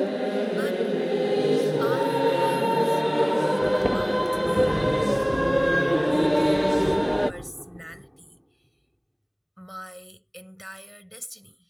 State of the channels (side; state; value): both; identical; correlation 1.00